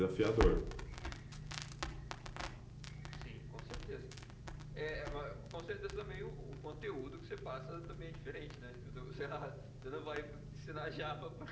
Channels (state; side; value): identical; both; correlation 1.00